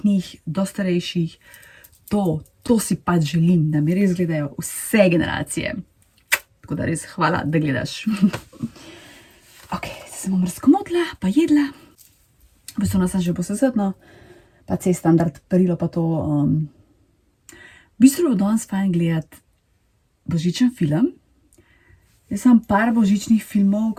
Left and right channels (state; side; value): identical; both; correlation 1.00